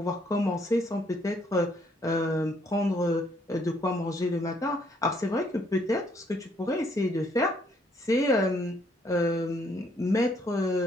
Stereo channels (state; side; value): normal; both; correlation 0.68